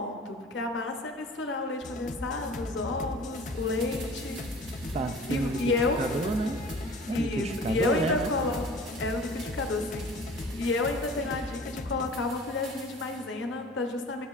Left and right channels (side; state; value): both; normal; correlation 0.43